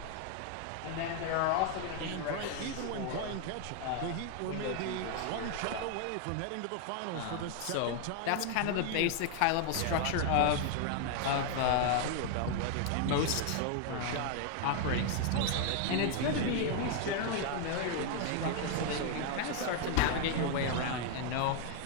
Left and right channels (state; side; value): different; both; correlation 0.00